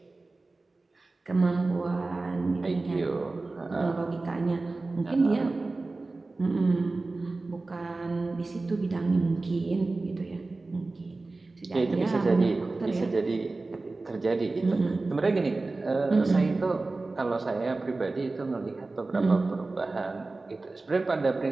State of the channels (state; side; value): quieter; left; 3.4 dB